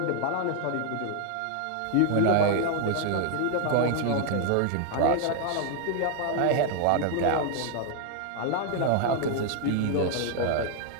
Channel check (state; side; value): different; both; correlation 0.00